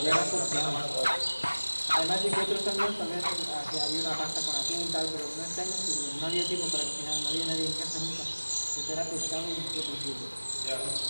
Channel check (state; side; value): inverted; both; correlation -1.00